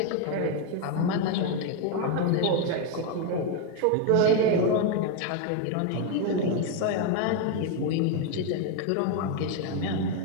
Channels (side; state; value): both; different; correlation 0.01